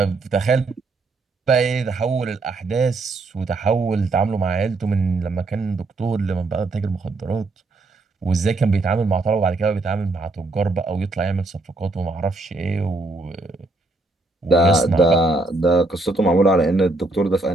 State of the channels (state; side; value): quieter; left; 3.2 dB